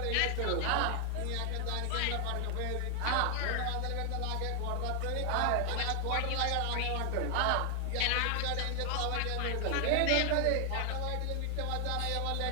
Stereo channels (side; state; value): both; different; correlation 0.00